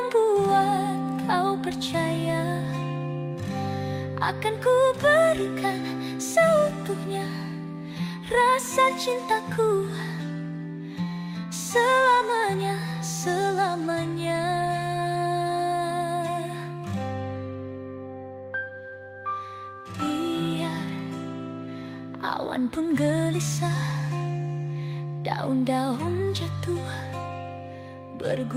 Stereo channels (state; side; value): identical; both; correlation 1.00